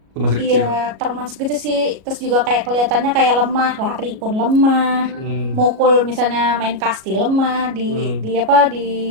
Itu masih kecil. Iya, termasuk gitu sih. Terus juga kayak kelihatannya kayak lemah, lari pun lemah, mukul misalnya main kasti lemah di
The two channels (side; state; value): left; late; 37 ms